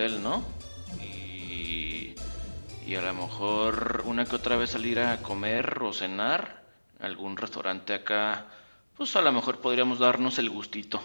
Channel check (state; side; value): inverted; both; correlation -1.00